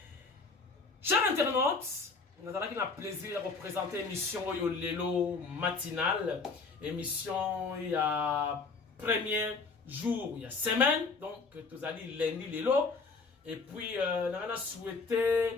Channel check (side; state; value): right; quieter; 4.3 dB